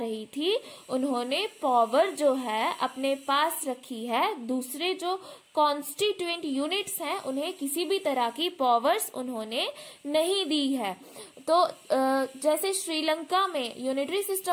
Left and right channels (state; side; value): identical; both; correlation 1.00